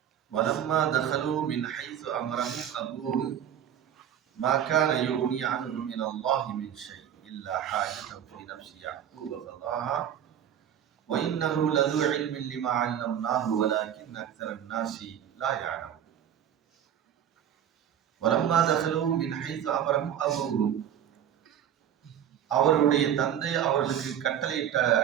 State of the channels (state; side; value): quieter; left; 9.7 dB